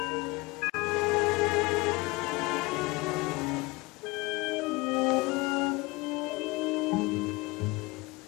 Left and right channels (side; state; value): right; quieter; 23.7 dB